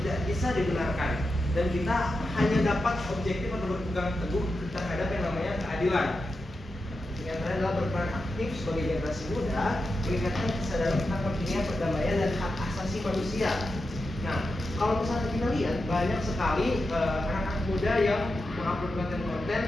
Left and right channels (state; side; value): normal; both; correlation 0.89